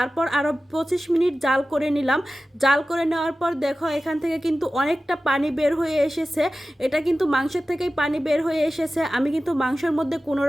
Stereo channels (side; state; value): both; normal; correlation 0.95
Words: আরও 25 মিনিট জাল করে নিলাম। জাল করে নেওয়ার পর দেখো এখান থেকে কিন্তু অনেকটা পানি বের হয়ে এসেছে। এটা কিন্তু মাংসের থেকেই পানি বের হয়ে এসেছে। আমি কিন্তু মাংসের মধ্যে কোনো